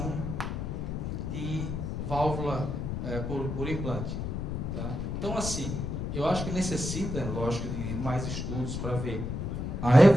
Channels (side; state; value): left; noise; rumble, 3 dB below the sound